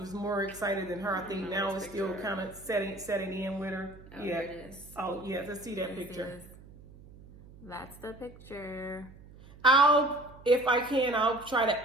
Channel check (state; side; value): noise; right; hum, 20 dB below the sound